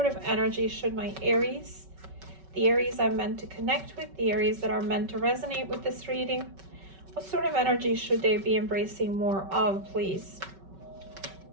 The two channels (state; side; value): late; left; 5.3 ms